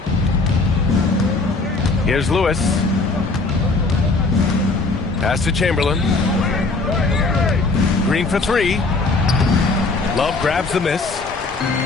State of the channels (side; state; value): right; quieter; 3.6 dB